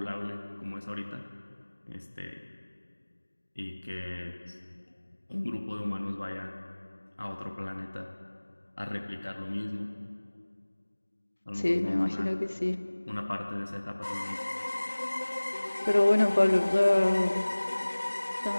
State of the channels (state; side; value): inverted; both; correlation -1.00